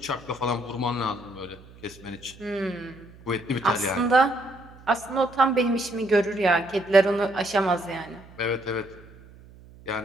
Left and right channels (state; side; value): noise; right; hum, 22 dB below the sound